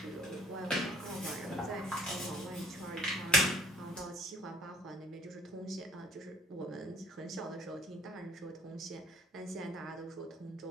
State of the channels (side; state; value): both; normal; correlation 0.56